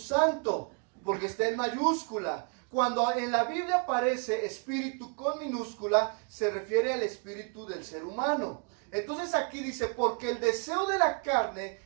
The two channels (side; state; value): left; quieter; 39.2 dB